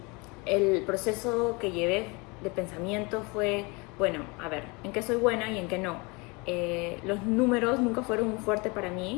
el proceso que llevé de pensamiento fue, bueno, a ver, ¿en qué soy buena y en qué no? Los números nunca fueron un fuerte para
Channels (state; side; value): quieter; right; 27.9 dB